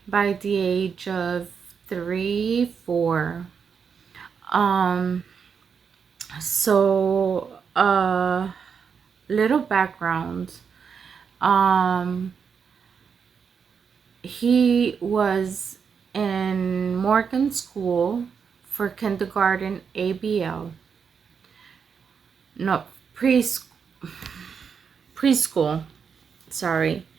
by the age of 3, 4. So little background. Um, he was in Morgan School for kindergarten ABL. No, preschool. Sorry,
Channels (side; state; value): left; quieter; 6.4 dB